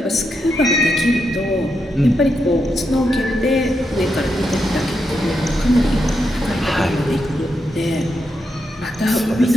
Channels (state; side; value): normal; both; correlation 0.84